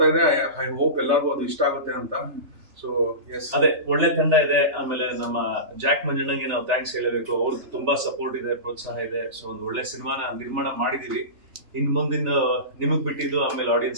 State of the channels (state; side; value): late; left; 3.3 ms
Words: ಇದೆ, ಐ ಹೋಪ್ ಎಲ್ಲರಿಗೂ ಅದು ಇಷ್ಟ ಆಗುತ್ತೆ ಅಂತ. ಸೊ ಎಸ್, ಅದೇ ಒಳ್ಳೆ ತಂಡ ಇದೆ. ಆಮೇಲೆ ನಮ್ಮ ಜಾಕ್ ಮಂಜಣ್ಣಂಗೆ ನಾವು ಥ್ಯಾಂಕ್ಸ್ ಹೇಳಬೇಕು, ಅವ್ರದ್ದು ತುಂಬಾ ಸಪೋರ್ಟ್ ಇದೆ, ಪ್ರೋತ್ಸಾಹ ಇದೆ. ಸೊ ಒಂದು ಒಳ್ಳೆ ಸಿನಿಮಾನ ನಿರ್ಮಾಣ ಮಾಡಿದೀವಿ. ಇನ್ ಮುಂದಿನ ನಿಮಗ್ ಬಿಟ್ಟಿದ್ದು, ಆಮೇಲೆ